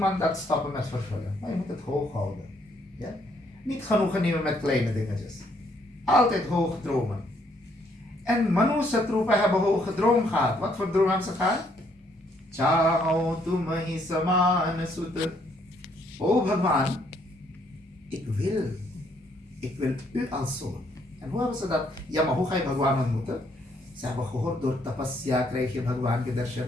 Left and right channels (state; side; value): normal; both; correlation 0.69